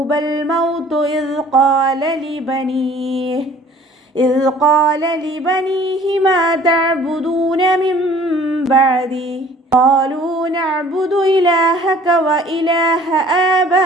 മൗതു إذ قال لبنيه ما تعبدون من بعدي قالوا نعبد إلهك وإله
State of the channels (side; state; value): both; normal; correlation 0.52